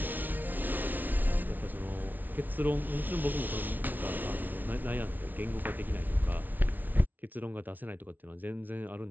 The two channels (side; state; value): left; late; 0.083 ms